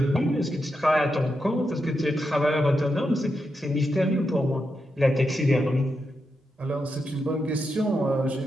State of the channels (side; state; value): both; normal; correlation 0.86